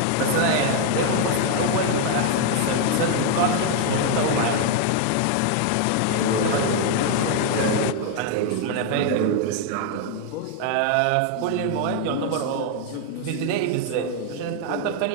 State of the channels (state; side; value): different; both; correlation 0.01